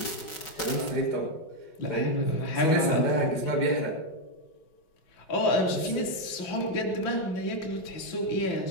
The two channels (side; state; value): right; late; 5.4 ms